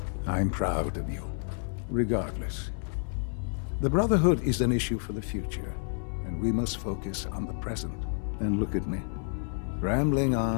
I'm proud of you. Regardless, the Brotherhood is an issue for the future, and we must focus on the present. And look at me, rambling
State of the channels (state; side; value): silent; right; 58 dB below the other